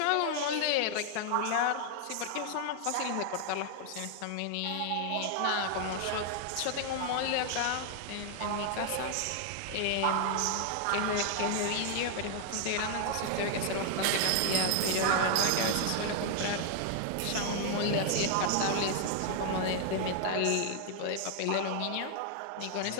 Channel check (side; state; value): both; different; correlation 0.00